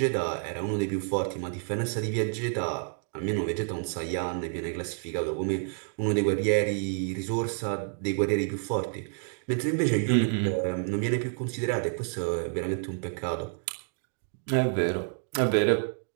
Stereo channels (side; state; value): left; silent; 59 dB below the other